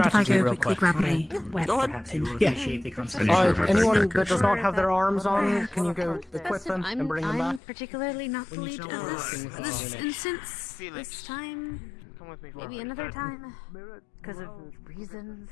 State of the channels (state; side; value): drops out; right; at 7.6 s